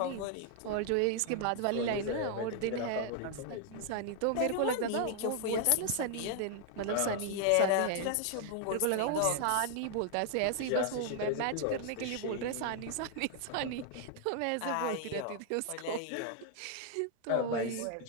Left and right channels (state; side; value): different; both; correlation 0.00